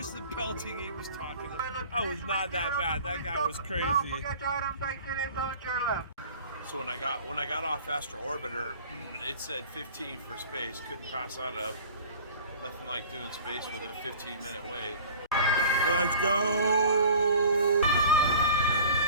the pelting he was talking about. That was not that bad, that guy was crazy. So when I got off Astro Orboter, it said 15 for space. Couldn't pass that up. Nothing like doing space with a 15-minute wait. Let's go!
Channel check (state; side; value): inverted; both; correlation -0.44